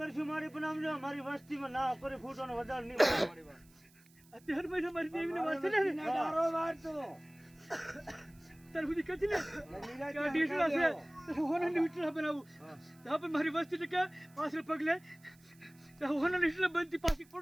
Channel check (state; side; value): noise; right; hiss, 28 dB below the sound